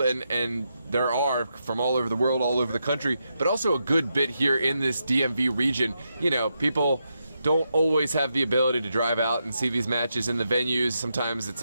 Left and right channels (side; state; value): both; inverted; correlation -0.84